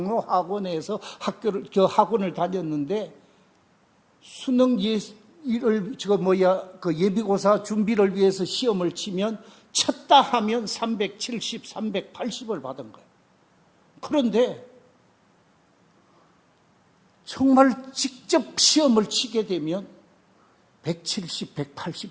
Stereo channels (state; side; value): identical; both; correlation 1.00